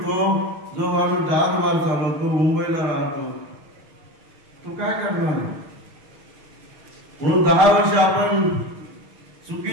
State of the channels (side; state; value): left; late; 6.4 ms